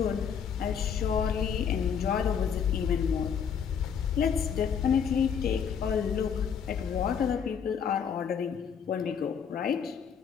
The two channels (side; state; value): right; quieter; 7.3 dB